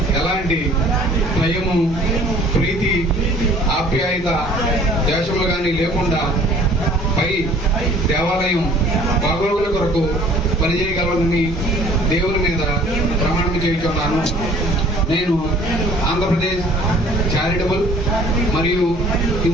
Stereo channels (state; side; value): normal; both; correlation 0.53